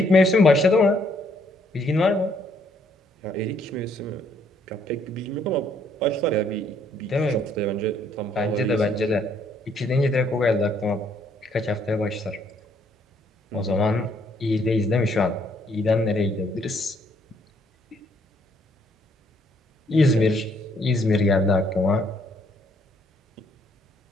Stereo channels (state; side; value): normal; both; correlation 0.68